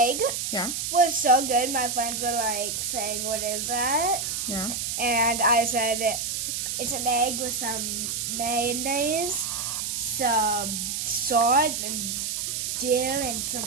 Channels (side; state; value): right; noise; hiss, 2 dB below the sound